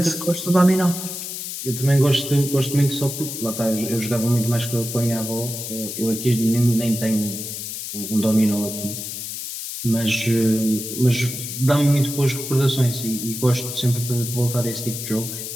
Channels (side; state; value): left; noise; hiss, 7 dB below the sound